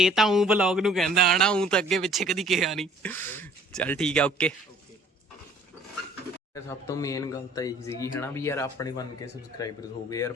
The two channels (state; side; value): normal; both; correlation 0.55